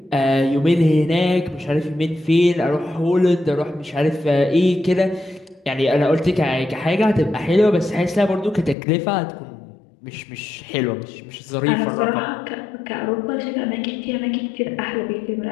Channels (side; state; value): right; drops out; at 8.8 s